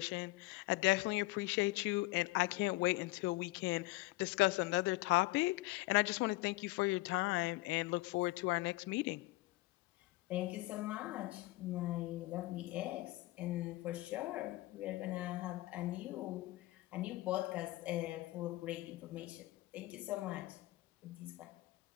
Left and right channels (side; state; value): right; quieter; 19.8 dB